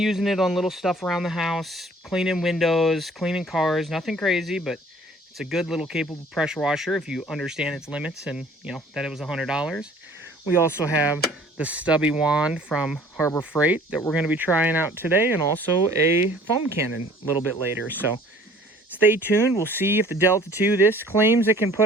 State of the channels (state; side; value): normal; both; correlation 0.52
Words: it on little stuff around the house, cleaning windows, cleaning cars, nothing crazy, but it's a good little capable pressure washer if you understand its limits and, you know, that it was $100. We also have the stubby wand from Harbor Freight that we're going to be trying out today, and also a foam cannon a little bit later. So stay tuned. We'll see if the Delta 2, this claims it can